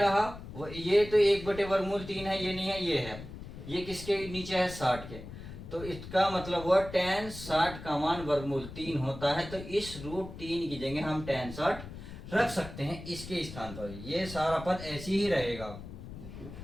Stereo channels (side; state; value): left; noise; rumble, 12 dB below the sound